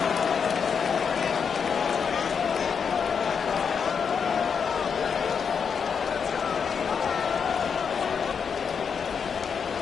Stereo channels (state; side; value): quieter; right; 6.5 dB